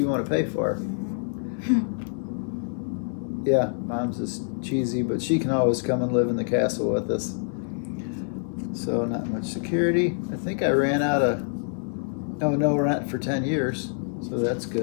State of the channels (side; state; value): right; silent; digital silence